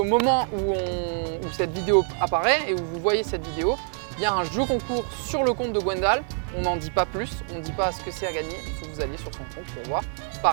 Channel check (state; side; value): silent; left; 56 dB below the other